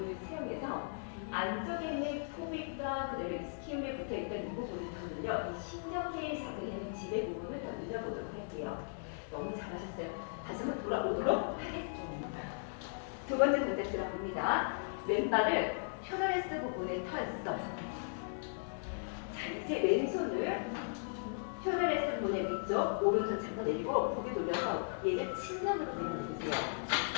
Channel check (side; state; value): right; silent; digital silence